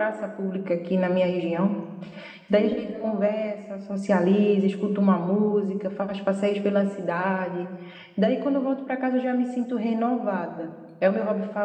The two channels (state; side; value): identical; both; correlation 1.00